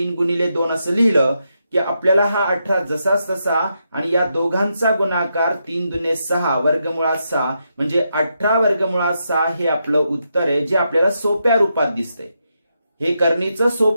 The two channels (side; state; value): both; inverted; correlation -0.83